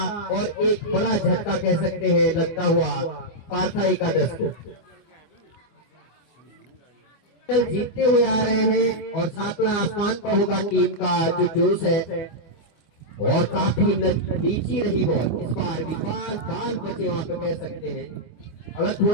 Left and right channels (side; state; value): right; late; 25 ms